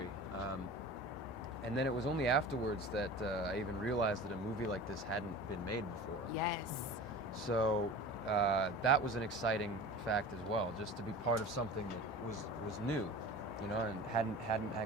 And then it was only afterwards that I even realized that a movie like this hadn't been made before. Yes. So that was an exciting fact as well, just to be part of something that was new, you know, and hadn't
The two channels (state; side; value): normal; both; correlation 0.37